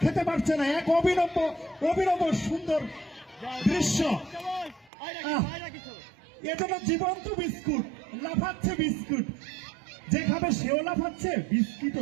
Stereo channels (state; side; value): drops out; left; at 4.9 s